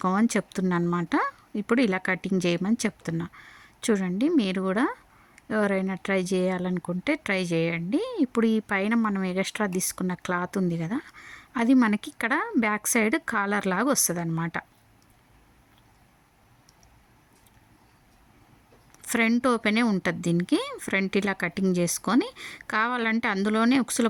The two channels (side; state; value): both; identical; correlation 1.00